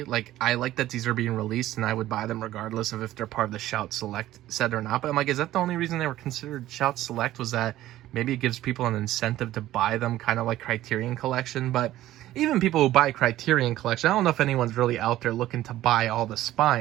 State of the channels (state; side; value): quieter; left; 14.5 dB